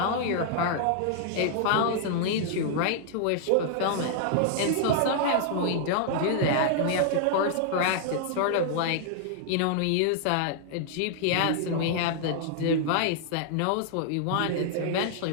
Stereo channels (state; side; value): different; both; correlation -0.01